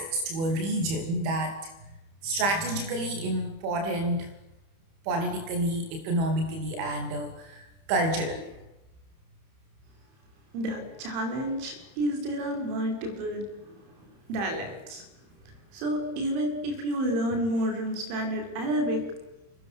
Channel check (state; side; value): late; left; 31 ms